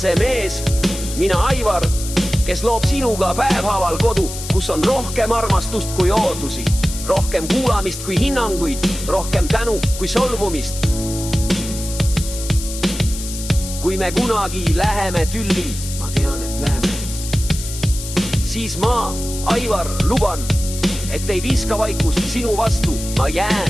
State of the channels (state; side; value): noise; left; hiss, 9 dB below the sound